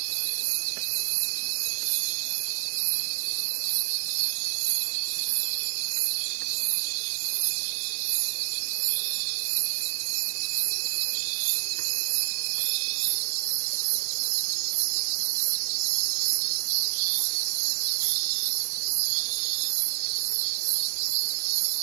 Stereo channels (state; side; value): silent; left; digital silence